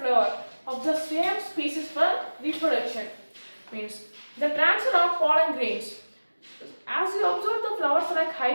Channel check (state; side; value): inverted; both; correlation -1.00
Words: of the same species for reproduction. Means the transfer of pollen grains. As you observe the flowers like